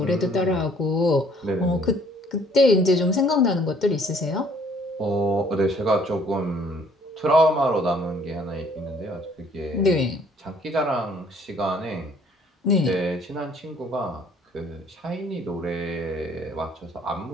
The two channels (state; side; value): normal; both; correlation 0.60